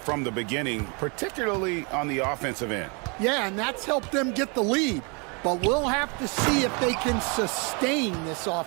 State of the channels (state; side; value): quieter; left; 32.9 dB